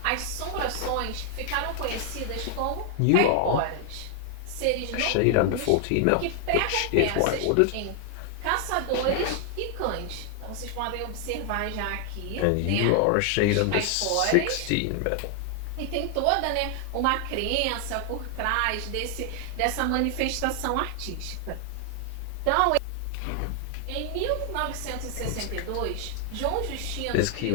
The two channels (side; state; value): both; different; correlation 0.00